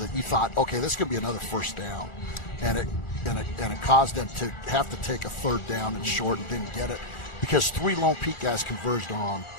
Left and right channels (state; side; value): late; right; 1.4 ms